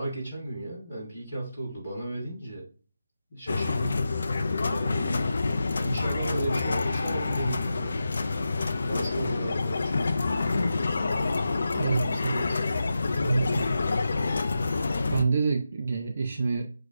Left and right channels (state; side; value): inverted; both; correlation -0.90